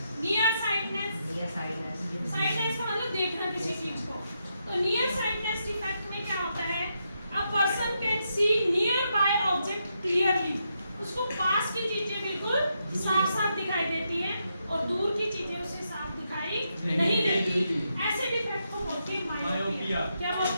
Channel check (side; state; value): both; inverted; correlation -0.82